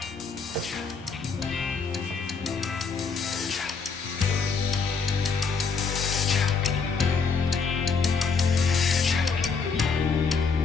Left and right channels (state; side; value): quieter; right; 5.1 dB